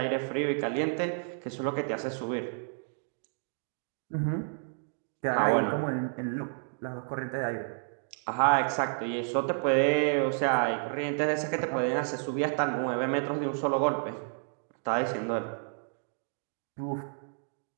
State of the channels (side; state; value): left; silent; 57 dB below the other